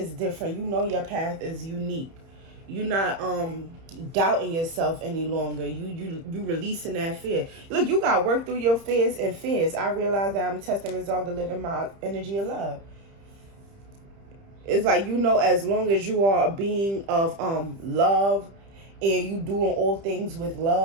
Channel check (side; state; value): left; late; 30 ms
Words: different. You know your path is unique. You're not doubting yourself any longer. You releasing that fear. Look, you gotta work through your fears and fears. I realize that I'm testing resolve to live in my energy of love. It's like, you know, as long as you are a being of love and you doing all things with